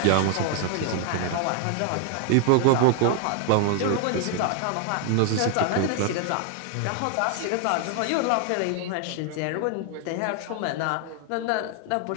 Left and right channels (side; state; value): both; different; correlation 0.00